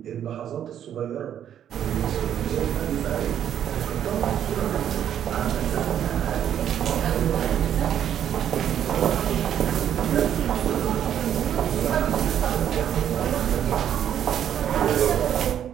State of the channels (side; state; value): left; quieter; 9.9 dB